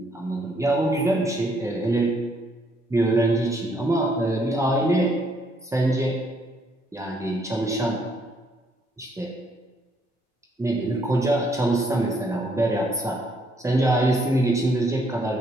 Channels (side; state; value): both; normal; correlation 0.70